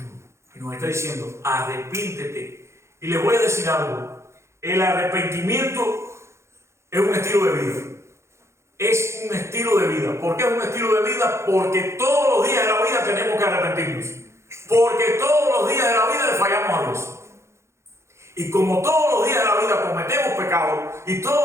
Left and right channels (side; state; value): left; late; 0.13 ms